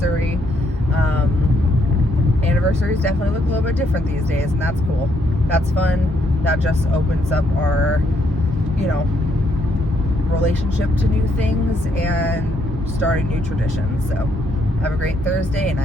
Anniversaries definitely look a little bit different these days, and that's cool. That's fun. That just opens up our, you know, relationship to new things and starting new traditions. So have a great Thursday, and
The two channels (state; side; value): normal; both; correlation 0.73